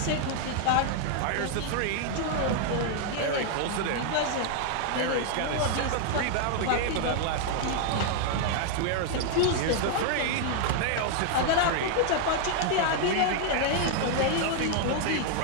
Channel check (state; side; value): different; both; correlation 0.00